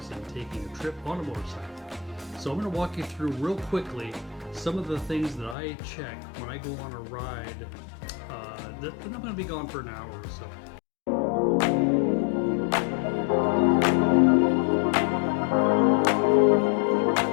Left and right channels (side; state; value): right; drops out; at 5.6 s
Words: and taking a trip on a motorcycle. So I'm going to walk you through real quickly some of the things that I check when I go on a ride that I'm going to be gone for an hour or so.